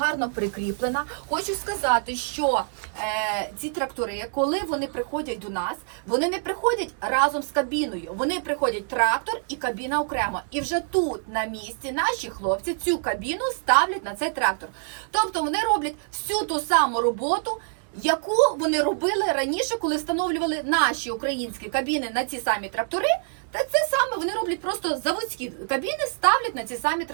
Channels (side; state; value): left; silent; digital silence